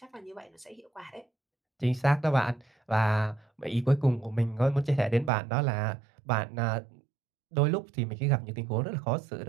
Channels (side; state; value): left; drops out; at 5.3 s